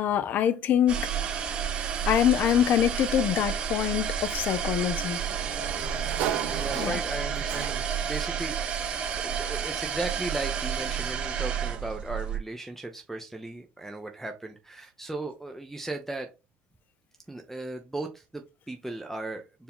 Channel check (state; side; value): normal; both; correlation 0.46